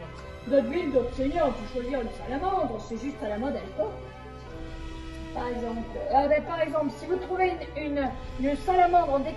D'autres villes, d'autres seigneurs ont pu choisir une salamandre, c'est juste à la mode à l'époque. Par exemple, si vous trouvez une salamandre en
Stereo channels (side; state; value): both; identical; correlation 1.00